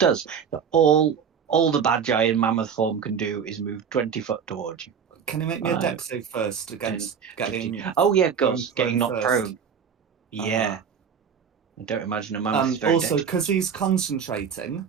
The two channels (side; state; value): left; quieter; 7.0 dB